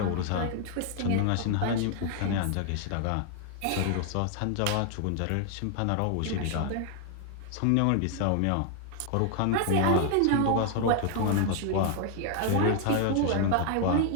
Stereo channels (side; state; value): both; different; correlation 0.00